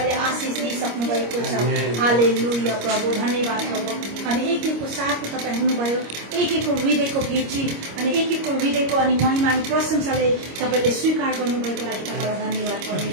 आशिष दिइसक्नु भएको छ हालेलुया प्रभु धन्यवाद प्रभु अनि एकको साथको तपाईँ हुनुभयो एकको हृदयको भेटी अनि एकको हृदयको अनि महिमा अनि प्रशंसाले तपाईँले स्वीकार गर्नुभएको लागि तपाईँलाई धन्यवाद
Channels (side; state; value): left; late; 25 ms